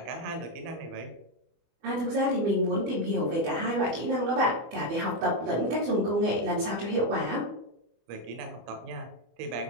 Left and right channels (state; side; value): late; left; 25 ms